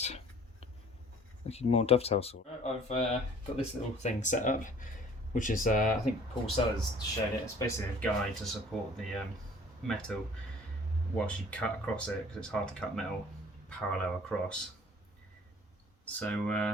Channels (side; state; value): both; normal; correlation 0.52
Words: looking more dovetail sort. I've got this little thing set up, which is I think Paul Sellers showed it. It's basically a guide to support the metal whilst you cut across it, because it's hard to cut metal parallel across.